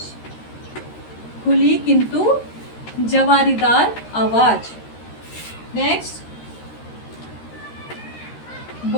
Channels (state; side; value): late; right; 13 ms